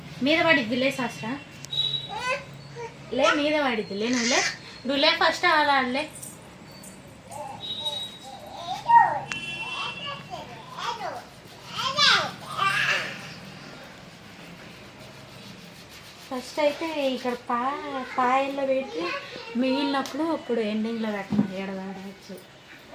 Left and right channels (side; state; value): both; identical; correlation 1.00